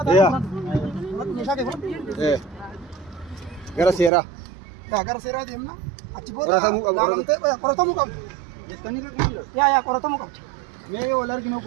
ta'a meeshaa kee fudhadhu gara seeraa gara seeraa deemna achi booda laalamtee qoratamuu qabdi. Jettanii rakkoon Yaa qoratamuu qabdi. mee wal arginu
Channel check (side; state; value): left; drops out; at 4.1 s